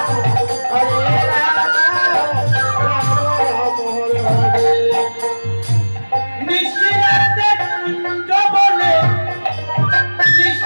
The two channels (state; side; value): inverted; both; correlation -1.00